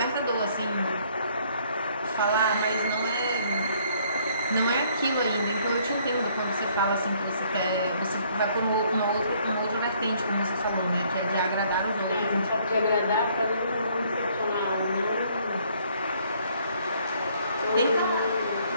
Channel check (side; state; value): both; inverted; correlation -0.64